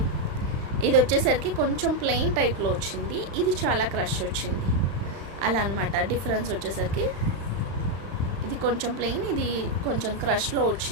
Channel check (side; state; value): left; late; 35 ms